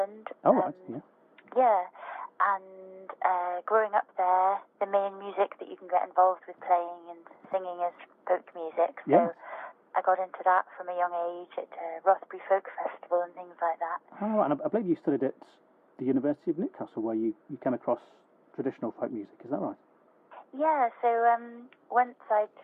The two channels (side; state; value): both; identical; correlation 1.00